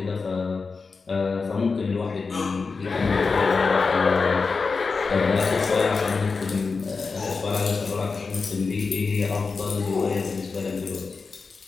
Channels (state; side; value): quieter; right; 4.6 dB